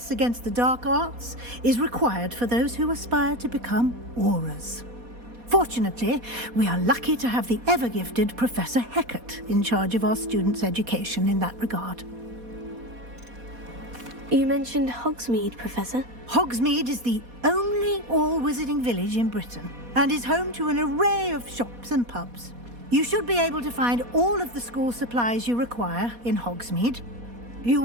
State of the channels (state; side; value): late; left; 4.2 ms